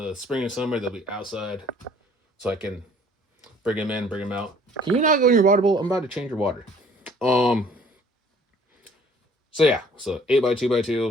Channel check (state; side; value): normal; both; correlation 0.56